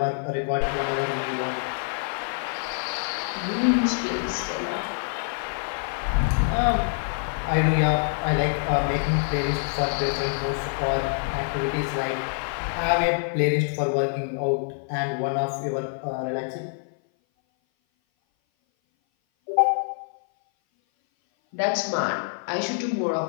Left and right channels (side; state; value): right; silent; 57 dB below the other